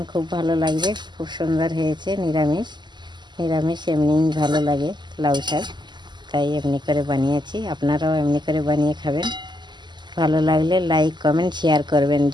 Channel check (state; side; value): late; left; 0.21 ms